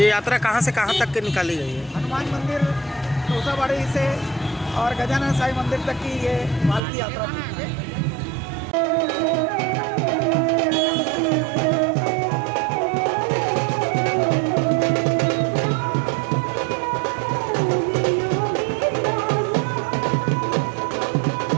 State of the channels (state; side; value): drops out; left; at 6.8 s